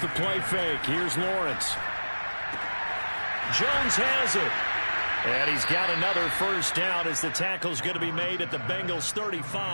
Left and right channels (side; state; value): both; inverted; correlation -1.00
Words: the play fake. Here's Lawrence. Jones has it. And he's got another first down as the tackle's going to be made at the Bengals